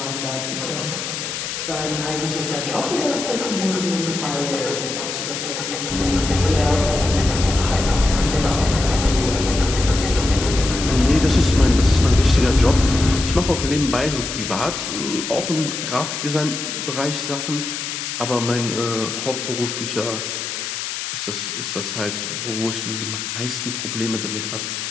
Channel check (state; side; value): noise; left; hiss, 5 dB below the sound